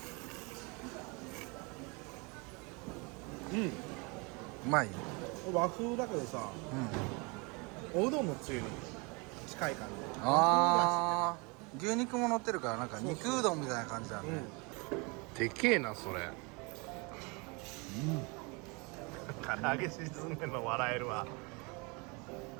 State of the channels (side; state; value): left; quieter; 29.4 dB